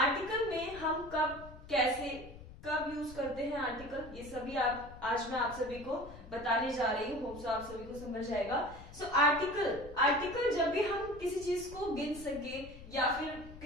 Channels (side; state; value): left; noise; rumble, 16 dB below the sound